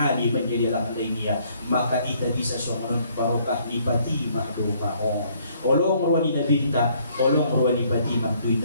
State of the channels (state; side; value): inverted; both; correlation -0.64